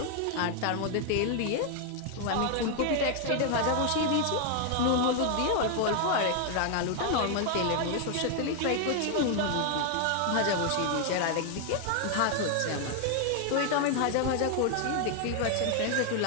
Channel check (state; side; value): different; both; correlation 0.00